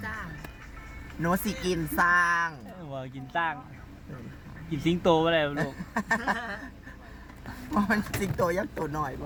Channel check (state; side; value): identical; both; correlation 1.00